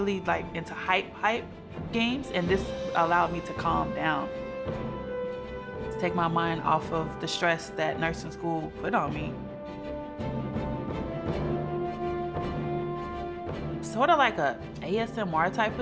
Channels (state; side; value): identical; both; correlation 1.00